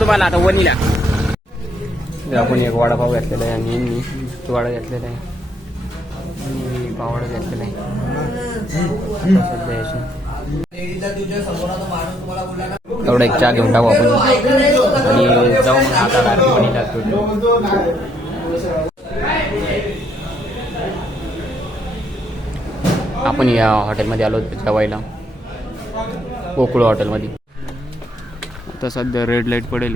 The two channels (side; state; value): both; normal; correlation 0.71